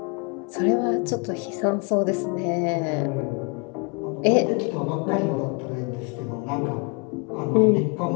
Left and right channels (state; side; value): quieter; right; 33.2 dB